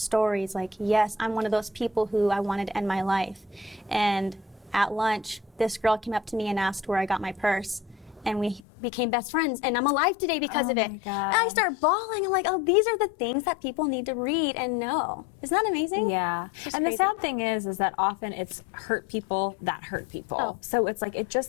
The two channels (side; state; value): right; drops out; at 8.6 s